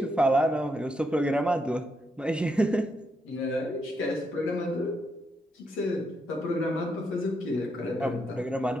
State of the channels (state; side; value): normal; both; correlation 0.80